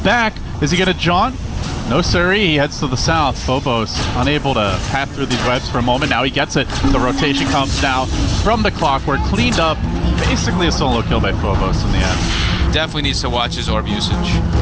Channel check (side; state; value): both; identical; correlation 1.00